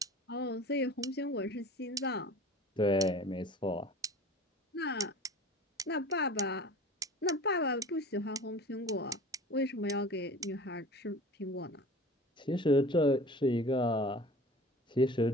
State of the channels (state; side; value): normal; both; correlation 0.41